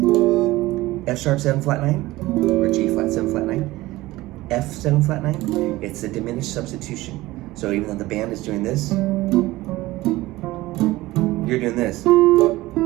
F sharp 7 flat 9, or G flat 7 flat 9, F 7 flat 9. It's a diminished substitution. So even though the band is doing this, you're doing this.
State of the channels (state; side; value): quieter; left; 18.4 dB